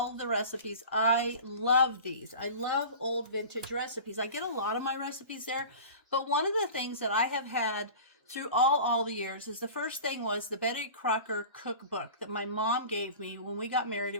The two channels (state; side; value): inverted; both; correlation -0.37